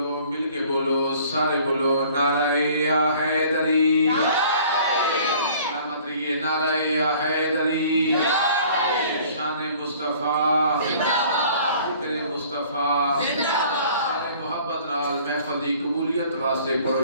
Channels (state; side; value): inverted; both; correlation -0.52